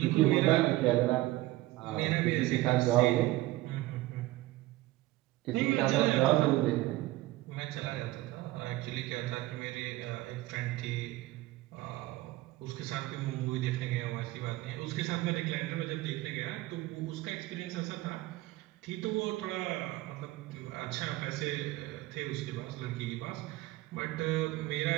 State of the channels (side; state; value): left; quieter; 17.8 dB